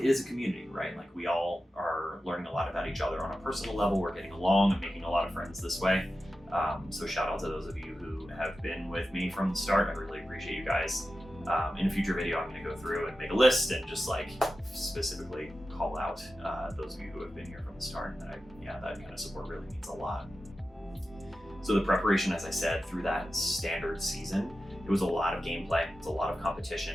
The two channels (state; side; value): normal; both; correlation 0.93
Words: is a community, right? Like, we all are learning a lot about each other on a personal level. We're getting along and making a lot of friends this way. So shout out to those of you who have been with me from the start. I really appreciate you guys. In a future video, I'm going to go through and make a list and just specifically call out those of you who have been here from the start. And that kind of support really means a lot. So the preparation, as I said, through that standard season, it was a lot of gameplay, it's a lot of